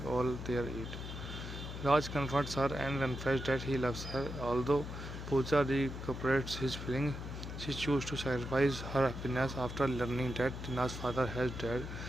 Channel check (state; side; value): noise; left; hum, 8 dB below the sound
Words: all their age. Raj confronts her and confesses that he loves her. Although Pooja recuperates his feelings, she chooses to sacrifice her happiness after learning that Tina's father has died